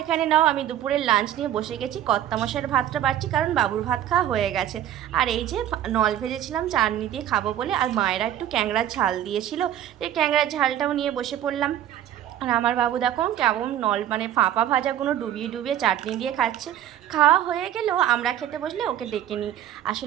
এখানে নাও আমি দুপুরের লাঞ্চ নিয়ে বসে গেছি। কর্তামশাইয়ের ভাতটা বাড়ছি, কারণ বাবুর ভাত খাওয়া হয়ে গেছে। আর এই যে নল ভেজেছিলাম চাটনি দিয়ে খাবো বলে, আর মায়েরা একটু ক্যাংড়ার ঝাল দিয়েছিল, এই ক্যাংড়ার ঝালটাও নিয়ে বসে পড়লাম। আর আমার বাবু দেখো কেমন মানে ফাঁপা ভাজাগুলো ডুবিয়ে চাটনি দিয়ে খাচ্ছে। খাওয়া হয়ে গেলেও আমরা খেতে বসলে ওকে ডেকে নিই।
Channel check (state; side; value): quieter; left; 11.3 dB